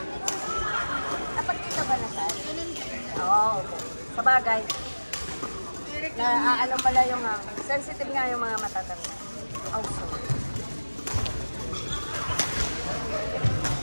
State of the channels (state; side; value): inverted; both; correlation -1.00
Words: Dapat kita ba na saan? Oo, okay. Sabagay. Ano pala yung sensitive nga yung mga matatanda. Also.